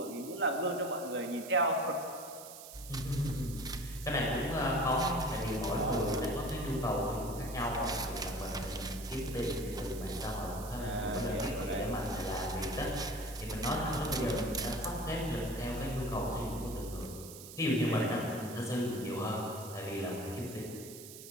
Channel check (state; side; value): noise; right; hiss, 14 dB below the sound